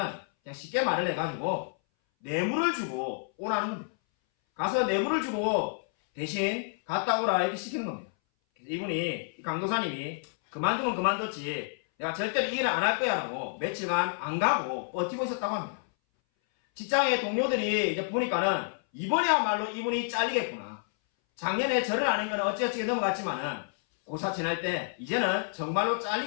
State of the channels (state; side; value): silent; right; 58 dB below the other